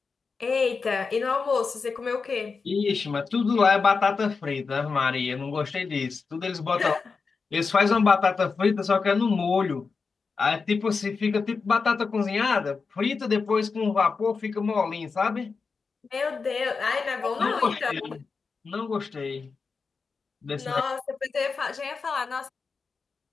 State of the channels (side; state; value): right; quieter; 4.8 dB